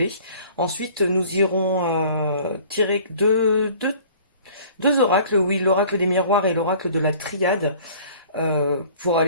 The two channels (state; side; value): inverted; both; correlation -0.50